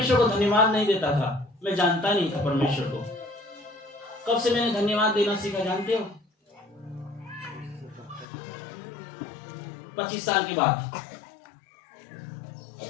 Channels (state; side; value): drops out; right; at 8.2 s